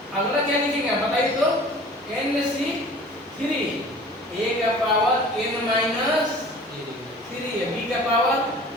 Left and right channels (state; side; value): normal; both; correlation 0.45